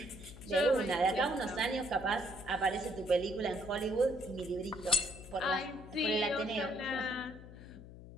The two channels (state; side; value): noise; left; hum, 15 dB below the sound